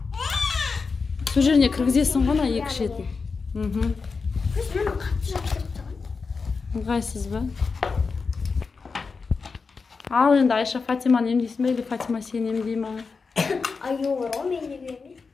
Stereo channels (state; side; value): quieter; right; 4.8 dB